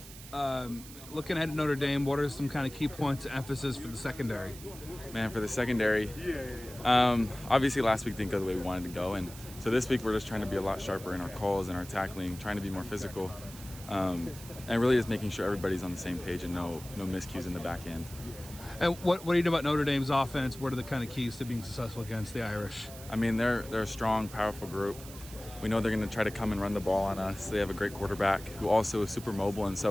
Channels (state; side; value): noise; right; hiss, 16 dB below the sound